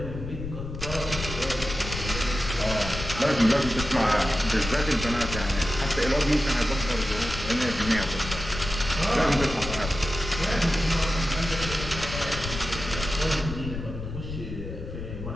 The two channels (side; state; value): left; noise; rumble, 7 dB below the sound